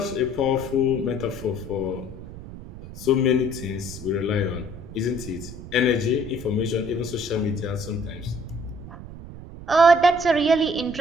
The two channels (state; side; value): noise; right; rumble, 13 dB below the sound